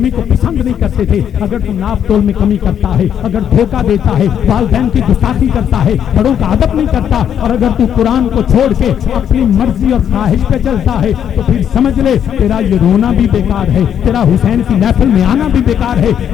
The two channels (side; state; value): right; quieter; 9.1 dB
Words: کو پسند نہیں کرتے تھے. اگر تو ناپ تول میں کمی کرتا ہے, اگر دھوکہ دیتا ہے, والدین کی گستاخی کرتا ہے, بڑوں کا ادب نہیں کرتا, اور اگر تو قرآن کو چھوڑ کے اپنی مرضی اور خواہش پہ چلتا ہے, تو پھر سمجھ لے تیرا یہ رونا بھی بیکار ہے, تیرا حسین کی محفل میں آنا بھی بیکار ہے.